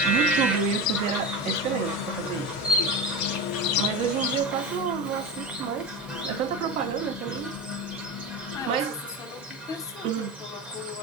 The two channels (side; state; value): both; normal; correlation 0.23